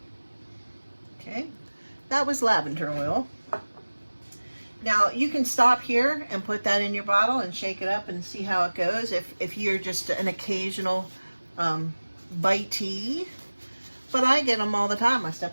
Okay, that was lavender oil. Now you can stop here and put that in your bottle and shake it up and see how it goes if you're just an occasional bitey. But I get them all the time. I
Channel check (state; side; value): inverted; both; correlation -1.00